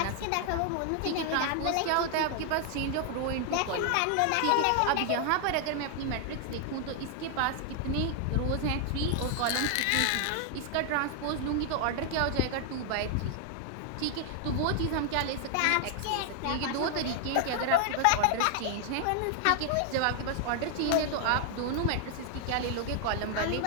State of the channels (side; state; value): both; different; correlation 0.00